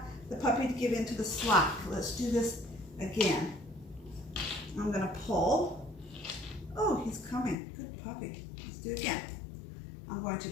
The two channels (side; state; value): right; drops out; at 7.6 s